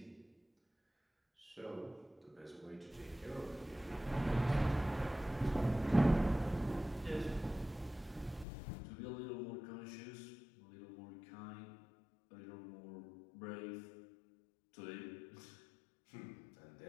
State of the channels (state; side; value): drops out; right; at 8.5 s